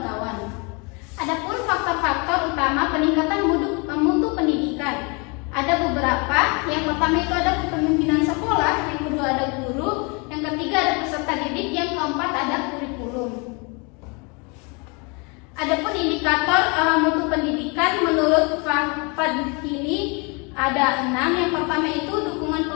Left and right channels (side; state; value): right; quieter; 31.4 dB